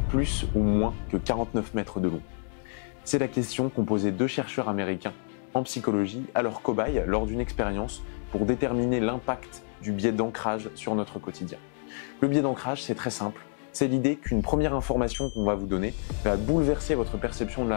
plus ou moins que 49 mètres de long? C'est la question qu'ont posé deux chercheurs américains en psychologie à leurs cobayes lors d'une expérience pour déterminer l'impact du biais d'ancrage sur notre quotidien. Le biais d'ancrage, c'est très simple. C'est l'idée qu'une première information qu'on va vous donner va bouleverser votre perception de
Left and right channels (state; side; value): silent; right; 58 dB below the other